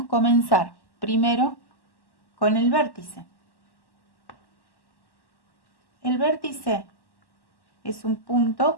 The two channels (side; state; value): right; late; 1.1 ms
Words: comenzar primero con el vértice. El vértice es un